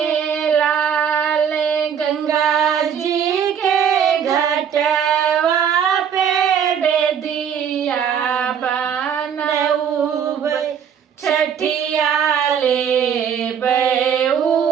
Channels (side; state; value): left; quieter; 8.0 dB